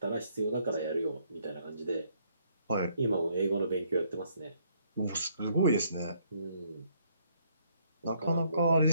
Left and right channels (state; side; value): inverted; both; correlation -0.68